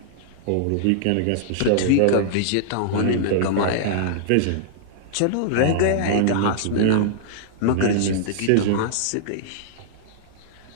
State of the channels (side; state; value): both; different; correlation -0.01